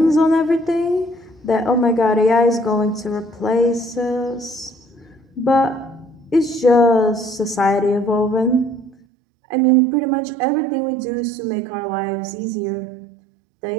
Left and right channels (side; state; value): left; drops out; at 9.0 s